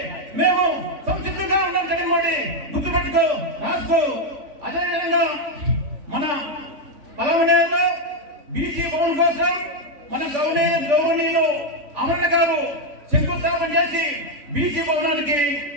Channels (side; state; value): left; late; 3.5 ms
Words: మేము సంసిద్ధంగా ఉన్నాం. జగన్మోహన్ రెడ్డి గుర్తుపెట్టుకో, రాసుకో. అదేవిధంగా మన పలమనేరులో బీసీ భవన్ కోసం మన గౌరవనీయులు అమరణ గారు శంకుస్థాపన చేసి బీసీ భవనానికి